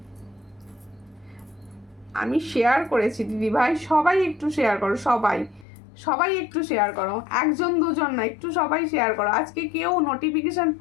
আমি শেয়ার করেছি দিদি ভাই, সবাই একটু শেয়ার করো, সবাই একটু শেয়ার করো, একজন দুজন না, একটু সবাই শেয়ার করো। আজকে কেউ নোটিফিকেশন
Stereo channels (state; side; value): drops out; right; at 5.7 s